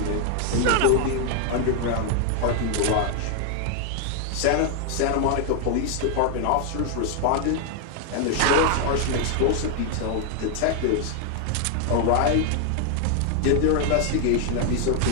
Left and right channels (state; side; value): different; both; correlation 0.00